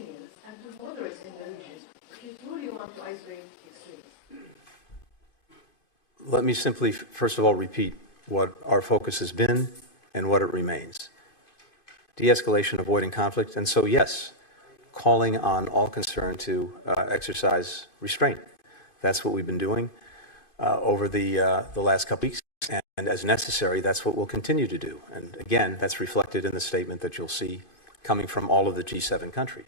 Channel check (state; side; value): late; right; 2.5 ms